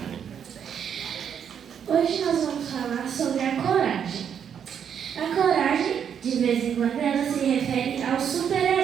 Hoje nós vamos falar sobre a coragem. A coragem, de vez em quando, ela se refere aos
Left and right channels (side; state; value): left; quieter; 8.1 dB